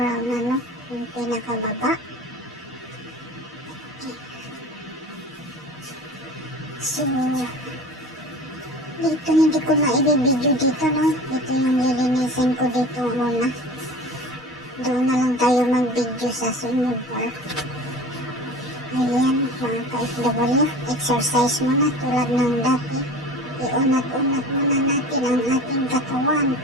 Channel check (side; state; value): both; normal; correlation 0.38